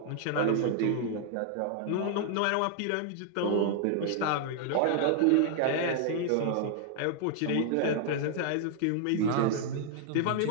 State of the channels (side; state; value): both; different; correlation -0.01